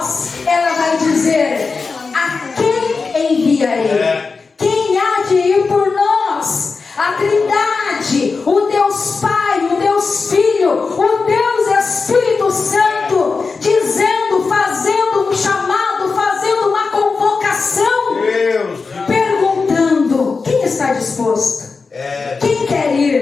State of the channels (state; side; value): quieter; right; 4.5 dB